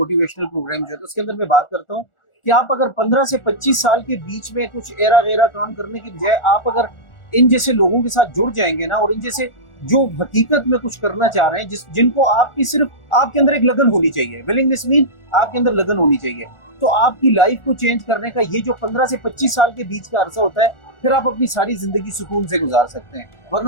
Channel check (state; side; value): late; right; 1.4 ms